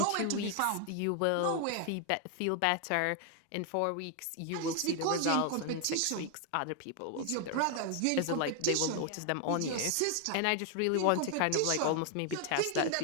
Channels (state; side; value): different; both; correlation 0.00